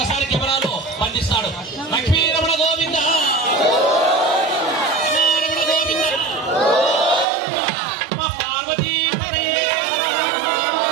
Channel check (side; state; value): left; drops out; at 7.2 s